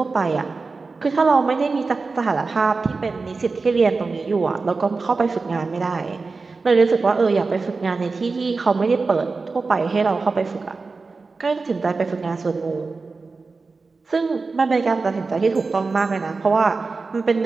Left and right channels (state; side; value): quieter; left; 4.1 dB